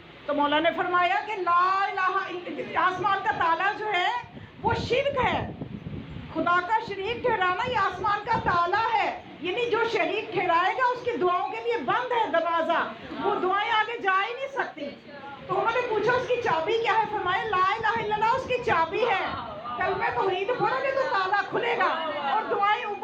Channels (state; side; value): identical; both; correlation 1.00